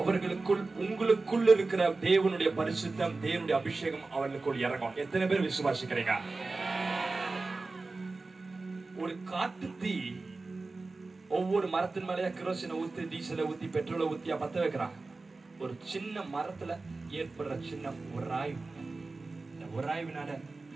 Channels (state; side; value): quieter; left; 3.6 dB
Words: உங்களுக்குள் இருக்கிற தேவனுடைய பரிசுத்தம், தேவனுடைய அபிஷேகம் அவர்களுக்குள் இறங்கும். எத்தனை பேர் விசுவாசிக்கிறீங்க? ஒரு காட்டு தீ ஒவ்வொரு மரத்தின் மேலேயே கிரோசினை ஊத்தி, டீசலை ஊத்தி, பெட்ரோலை ஊத்தியா பத்த வைக்கிறாங்க. ஒரு சின்ன மரத்துல ஏற்படுற சின்ன உராய்வு, இந்த உராய்வினால